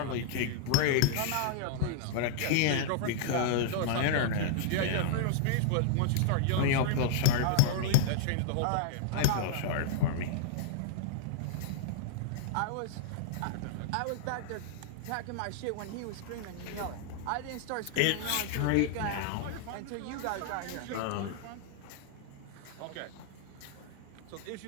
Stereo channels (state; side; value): different; both; correlation -0.01